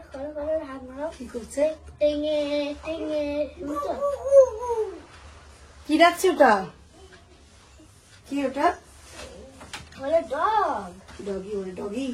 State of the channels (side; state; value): both; identical; correlation 1.00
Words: কি করছে? কি ডাকছে ওটা? কি ওটা? ডগি, ওরে ডগি।